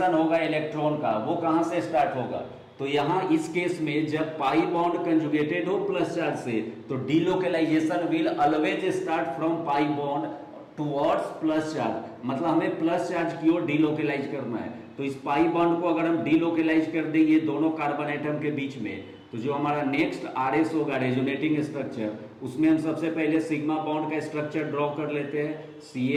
होगा इलेक्ट्रॉन का वो कहाँ से स्टार्ट होगा। तो यहाँ इस केस में जब पाई बॉन्ड कंजुगेटेड हो प्लस चार्ज से, तो delocalisation will always start from pi bond towards plus charge, मतलब हमें प्लस चार्ज की ओर डीलोकलाइज करना है। तो इस पाई बॉन्ड को अगर हम डीलोकलाइज कर दें ये दोनों कार्बन एटम के बीच में, तो जो हमारा नेक्स्ट RS होगा रेजोनेटिंग स्ट्रक्चर, उसमें हम सबसे पहले सिग्मा बॉन्ड का स्ट्रक्चर ड्रॉ कर लेते हैं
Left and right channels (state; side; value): identical; both; correlation 1.00